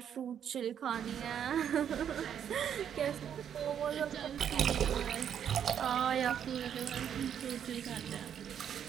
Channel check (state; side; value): quieter; left; 8.8 dB